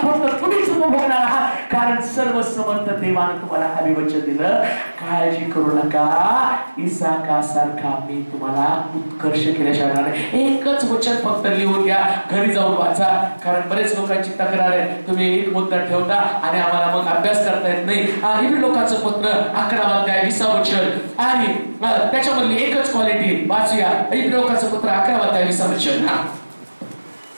फक्त तुम्हीच उपभोगणार आहात. कारण सर्वसमर्थ देवानं तुम्हाला अभिवचन दिलं, काळजी करू नका, इसाकासारखा मी तुम्हाला उत्कर्ष केल्याशिवाय नाही. एकच वचन फक्त लिहून घ्या, घरी जाऊन वाचा. कारण बरेच लोकांची तक्रार आहे, तुम्ही एक मुद्दा ठेवता आणि आम्हाला मग अभ्यास करता येत नाही. इब्री लोकांचं पत्र 11 अध्याय 20 वचन आणि त्याच्यामधली एकच क्वालिटी वाचूया. इब्री लोकांचं पत्र 11 अध्याय 20 वचन.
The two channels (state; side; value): inverted; both; correlation -1.00